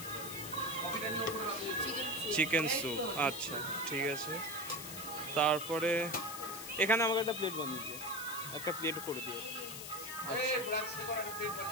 চিকেন স্যুপ। আচ্ছা ঠিক আছে। তারপরে এখানে আমাকে একটা প্লেট বানিয়ে দিও, একটা প্লেট করে দিও। আচ্ছা,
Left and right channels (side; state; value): left; noise; hiss, 8 dB below the sound